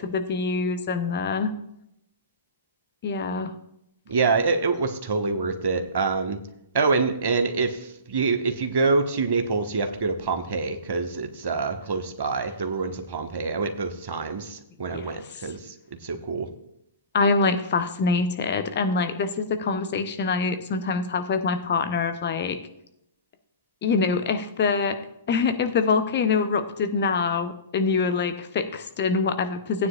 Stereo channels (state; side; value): inverted; both; correlation -0.34